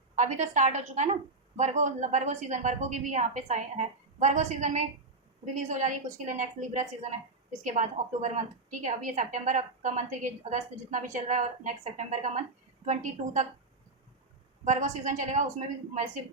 अभी तो स्टार्ट हो चुका है ना वर्गो, वर्गो सीजन, वर्गो की भी यहाँ पे साइन है, वर्गो सीजन में रिलीज हो जा रही है कुछ के लिए। नेक्स्ट लिब्रा सीजन है, इसके बाद अक्टूबर मंथ, ठीक है। अभी ये सितंबर का मंथ है, ये अगस्त जितना भी चल रहा है, और नेक्स्ट सितंबर का मंथ 22 तक वर्गो सीजन चलेगा, उसमें भी मैसिव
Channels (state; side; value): quieter; left; 3.4 dB